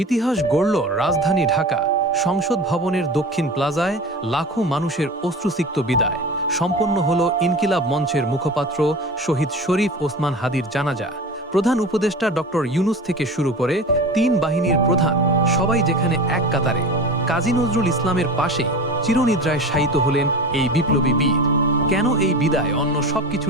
গড়ল রাজধানী ঢাকা। সংসদ ভবনের দক্ষিণ প্লাজায় লাখো মানুষের অশ্রুসিক্ত বিদায়। সম্পন্ন হল ইনকিলাব মঞ্চের মুখপাত্র শহীদ শরীফ ওসমান হাদির জানাজা। প্রধান উপদেষ্টা ডক্টর ইউনুস থেকে শুরু করে তিন বাহিনীর প্রধান সবাই যেখানে এক কাতারে। কাজী নজরুল ইসলামের পাশেই চিরনিদ্রায় শায়িত হলেন এই বিপ্লবী বীর। কেন এই বিদায় অন্য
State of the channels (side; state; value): both; normal; correlation 0.32